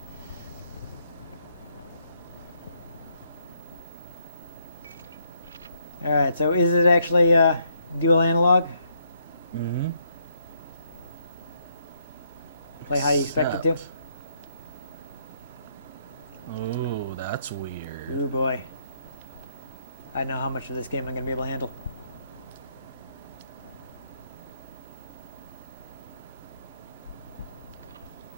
All right, so is it actually dual analog? Mm-hmm. Play how you expect it to? Ooh, that's weird. Ooh boy. I know how much of this game I'm going to be able to handle.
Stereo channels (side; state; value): both; inverted; correlation -0.73